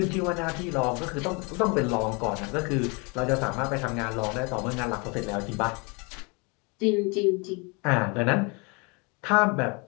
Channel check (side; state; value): right; quieter; 30.7 dB